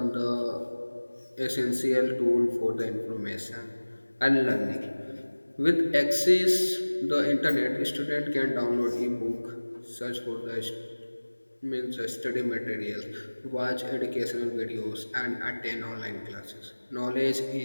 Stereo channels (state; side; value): inverted; both; correlation -1.00